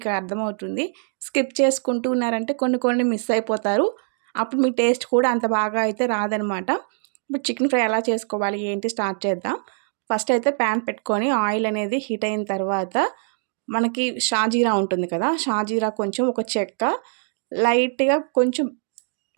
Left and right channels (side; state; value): left; silent; 58 dB below the other